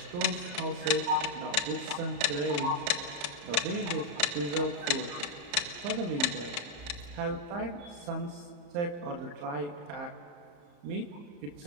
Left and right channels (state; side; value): late; left; 34 ms